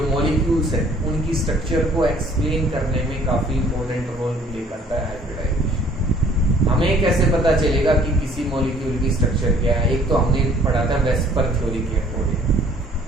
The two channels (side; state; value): both; normal; correlation 0.57